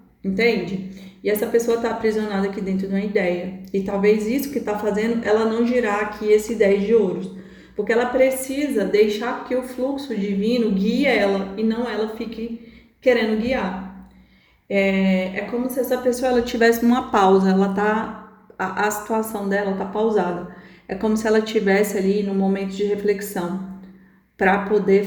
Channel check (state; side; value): identical; both; correlation 1.00